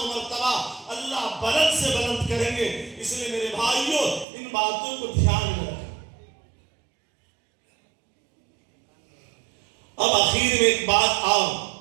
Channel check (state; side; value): drops out; left; at 4.2 s